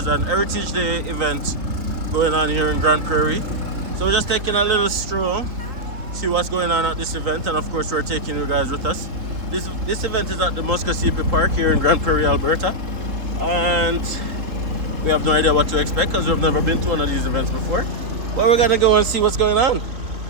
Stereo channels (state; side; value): late; left; 3.8 ms